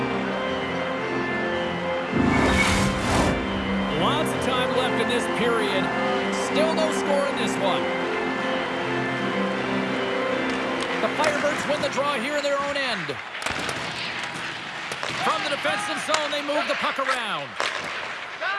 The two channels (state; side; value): identical; both; correlation 1.00